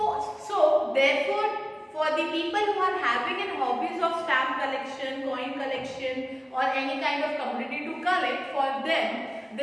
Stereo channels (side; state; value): both; identical; correlation 1.00